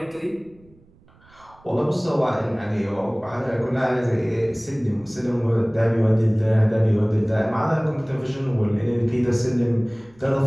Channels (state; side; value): noise; right; rumble, 28 dB below the sound